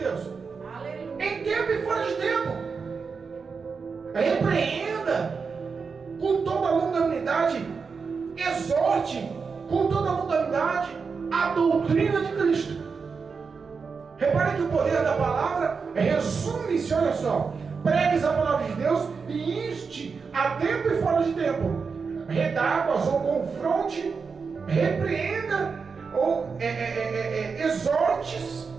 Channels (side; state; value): left; quieter; 5.2 dB